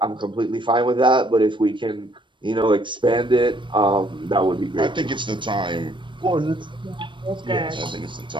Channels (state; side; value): late; left; 0.23 ms